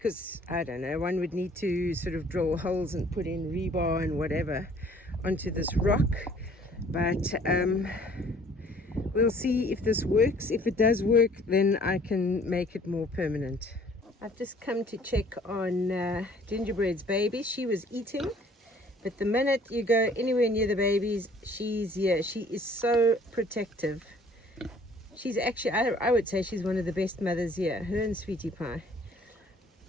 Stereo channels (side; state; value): both; normal; correlation 0.56